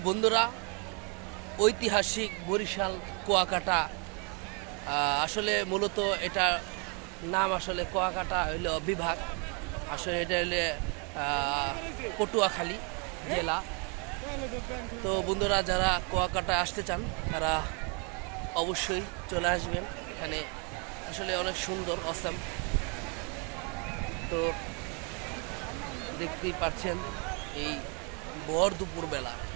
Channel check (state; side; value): quieter; left; 34.8 dB